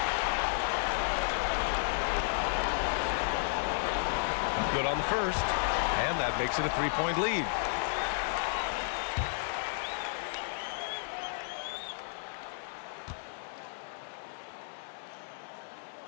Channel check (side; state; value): right; silent; digital silence